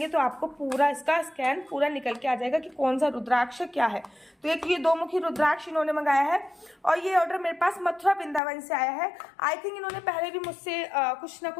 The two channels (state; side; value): drops out; right; at 8.4 s